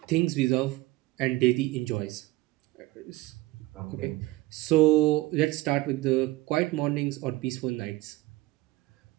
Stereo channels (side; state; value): left; quieter; 19.2 dB